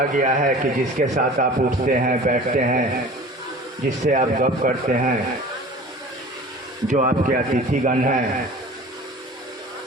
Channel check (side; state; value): both; normal; correlation 0.42